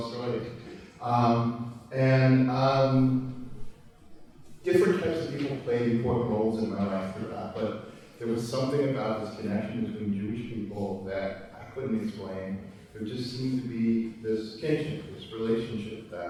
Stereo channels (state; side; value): identical; both; correlation 1.00